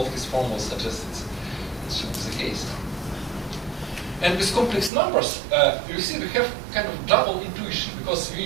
his formulas suggest it should be the case. And with complex numbers, you see we have kind of double intuition, because we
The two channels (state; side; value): drops out; left; at 4.9 s